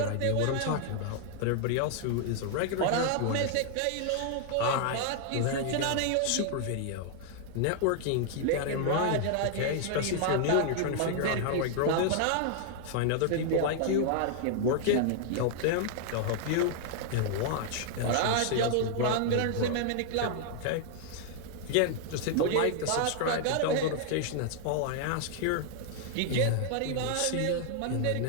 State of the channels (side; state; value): both; different; correlation 0.00